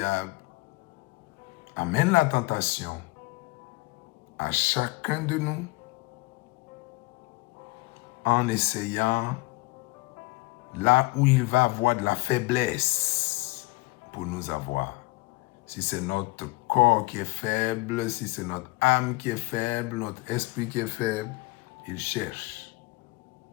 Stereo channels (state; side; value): quieter; right; 22.6 dB